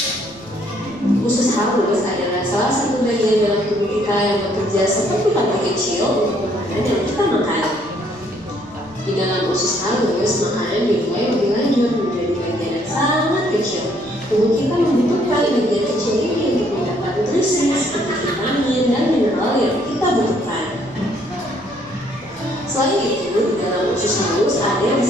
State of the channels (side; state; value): left; noise; rumble, 25 dB below the sound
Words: Usus halus adalah salah satu bagian dalam tubuh kita yang bekerja seperti pantai kecil untuk makanan yang kita makan. Di dalam usus halus, makanan dimulai lebih lanjut menjadi bagian yang sangat kecil. Tubuh kita membutuhkan bagian kecil ini untuk mendapat nutrisi seperti vitamin dan mineral yang kita butuhkan. Selain itu, di dalam usus halus ada yang